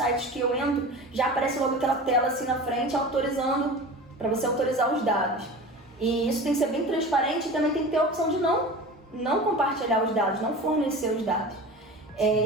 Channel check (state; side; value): normal; both; correlation 0.35